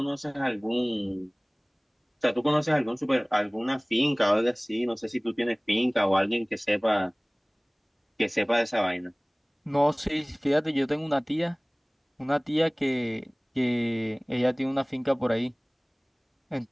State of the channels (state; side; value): identical; both; correlation 1.00